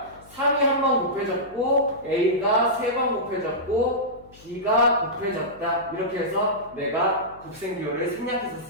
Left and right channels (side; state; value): left; noise; hum, 24 dB below the sound